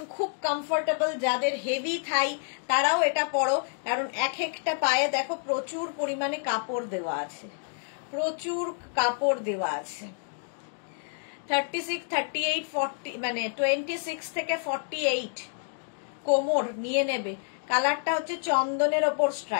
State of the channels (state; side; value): silent; right; 59 dB below the other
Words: খুব কমফোর্টেবল। যাদের হেভি থাই তারাও এটা পরো, কারণ এক একটা পায়ে দেখো প্রচুর পরিমাণে কাপড় দেওয়া আছে, প্রচুর কাপড় দেওয়া আছে। 36, 38, 40, মানে 26 থেকে 48 কোমর নিয়ে নেবে। কালারটা হচ্ছে চন্দনের ওপর